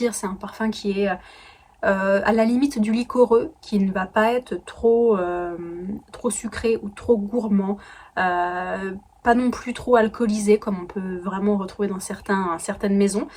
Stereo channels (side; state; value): both; identical; correlation 1.00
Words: C'est un parfum qui est à la limite du liquoreux, qui ne va pas être trop sucré ou trop gourmand. Pas non plus trop alcoolisé comme on peut vraiment retrouver dans certaines maisons.